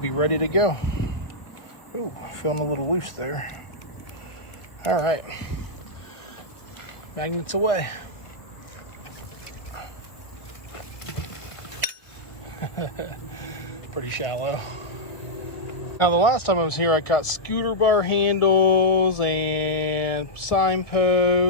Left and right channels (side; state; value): right; late; 1.2 ms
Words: be ready to go. Ooh, feeling a little loose there. All right, magnets away. Pretty shallow. Now, the last time I was here, I caught scooter bar handles and